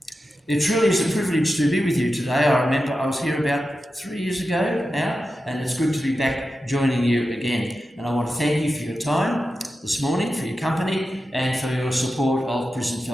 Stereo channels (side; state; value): both; normal; correlation 0.91